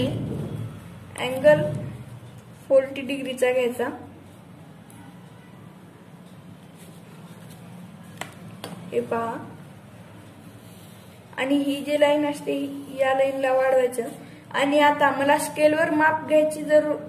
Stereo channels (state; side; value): identical; both; correlation 1.00